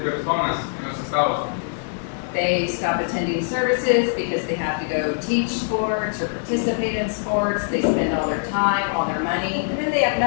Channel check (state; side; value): silent; right; 64 dB below the other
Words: en los Estados Unidos. They stop attending services because they have to go teach sports or participate in sports. They spend all their time, all their money, and then they have